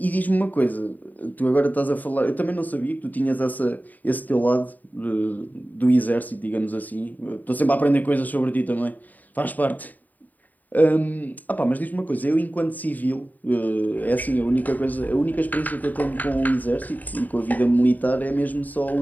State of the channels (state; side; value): late; right; 0.082 ms